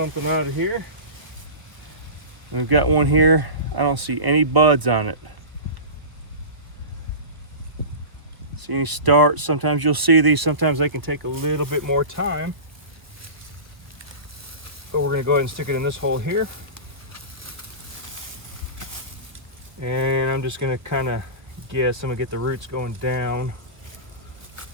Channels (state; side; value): late; left; 1.0 ms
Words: out of here. And we've got one here. I don't see any buds on it. See any starts? Sometimes you'll see these. Sometimes they can take a little bit more time. But we're gonna go ahead and stick it in this hole here. And I'm just gonna kind of guess, I'm gonna get the roots going down